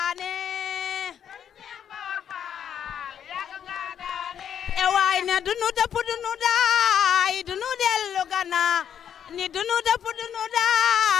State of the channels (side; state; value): right; quieter; 8.9 dB